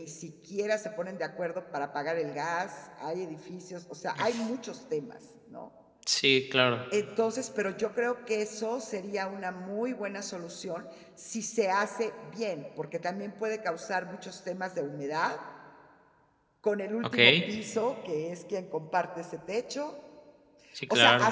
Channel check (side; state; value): both; identical; correlation 1.00